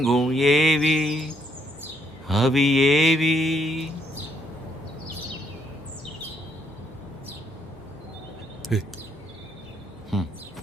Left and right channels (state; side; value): normal; both; correlation 0.72